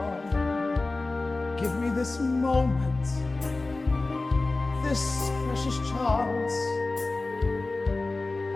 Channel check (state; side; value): quieter; right; 3.3 dB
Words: Give me this moment, this precious chance.